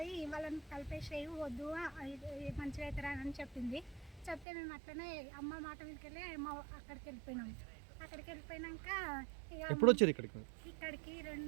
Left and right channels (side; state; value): left; drops out; at 4.5 s